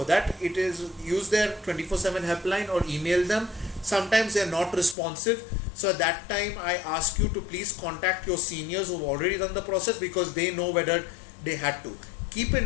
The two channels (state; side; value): drops out; right; at 5.0 s